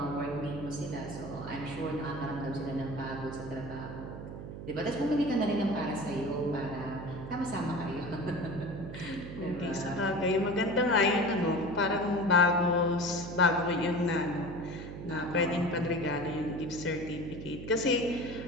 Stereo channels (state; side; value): noise; right; hum, 9 dB below the sound